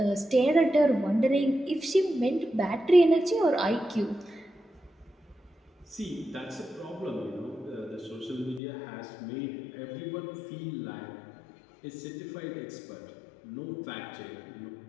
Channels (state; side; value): drops out; right; at 8.6 s